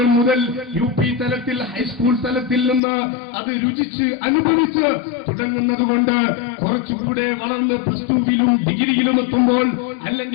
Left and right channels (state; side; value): drops out; right; at 2.8 s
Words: മുതൽ UP തലത്തിൽ ഹൈസ്കൂൾ തലത്തിൽ നിന്ന് അത് രുചിച്ച് അനുഭവിച്ച് തുടങ്ങുന്നത് കൊണ്ട് കുറച്ചുകൂടെ വളർന്ന് +2-വിലും ഡിഗ്രിയിലും എത്തുമ്പോൾ,